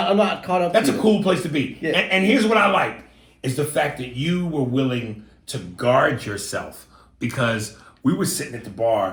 not caught up. That's to a it. cool place to be. Yeah. And here's what I like, is the fact that you were willing to guard yourself, because we were sitting at the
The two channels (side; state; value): both; identical; correlation 1.00